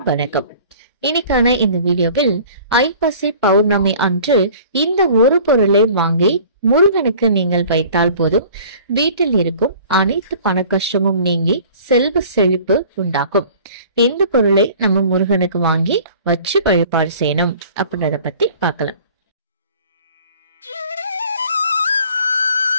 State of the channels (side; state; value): both; inverted; correlation -0.48